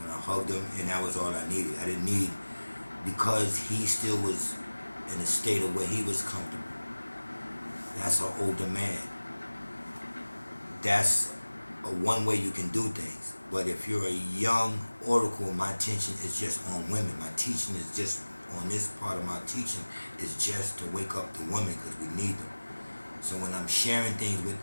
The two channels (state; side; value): inverted; both; correlation -1.00